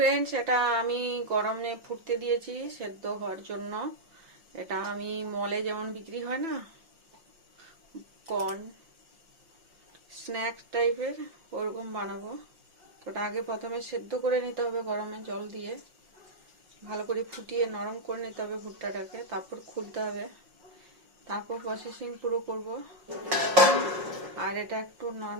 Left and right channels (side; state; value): left; late; 5.6 ms